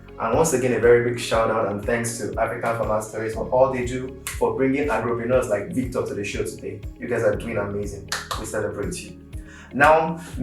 And once again, a very big shout out and thanks to African Farmer Stories for all they do for bringing agripreneurs like Victor to the show today. You guys are doing amazing. We celebrate you. Now,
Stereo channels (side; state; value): both; identical; correlation 1.00